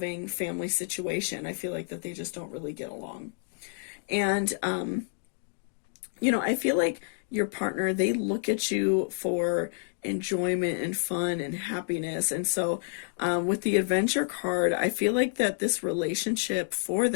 family situation. I feel like that they just don't really get along. And, you know, I feel like your partner, they look at you for enjoyment and fun and happiness. And so with the adventure card, I feel like that this relationship for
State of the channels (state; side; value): silent; right; digital silence